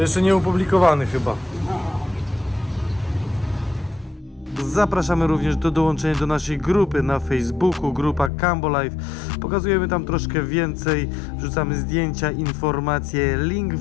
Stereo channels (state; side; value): drops out; right; at 8.3 s